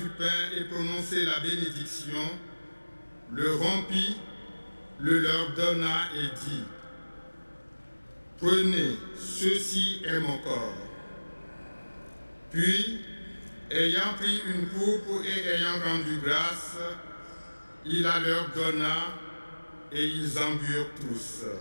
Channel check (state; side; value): inverted; both; correlation -1.00